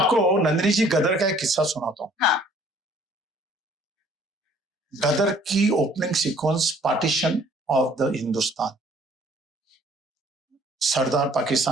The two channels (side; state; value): both; normal; correlation 0.58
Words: नंदिनी जी गदर का एक किस्सा सुनाता हूँ। हाँ। गदर की opening sequence, partition of the Hindustan. सरदार